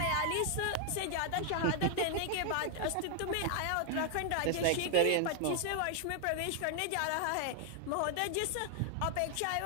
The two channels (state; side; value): different; both; correlation 0.00